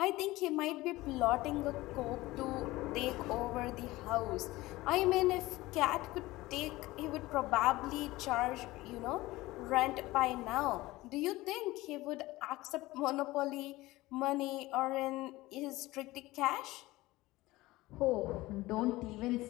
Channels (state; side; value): quieter; right; 18.9 dB